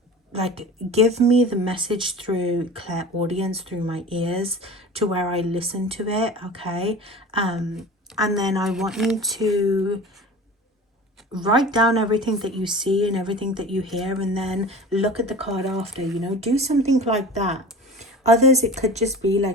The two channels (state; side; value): normal; both; correlation 0.37